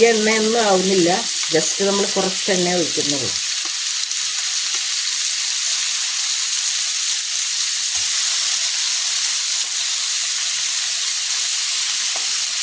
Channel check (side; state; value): both; identical; correlation 1.00